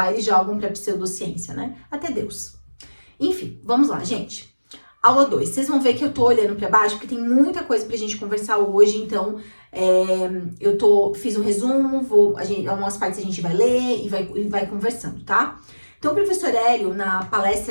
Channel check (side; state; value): both; inverted; correlation -1.00